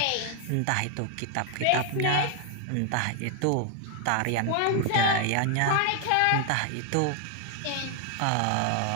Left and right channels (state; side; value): different; both; correlation 0.00